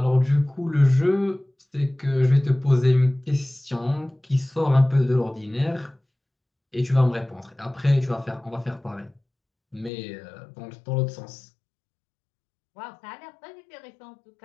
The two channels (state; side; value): drops out; right; at 9.9 s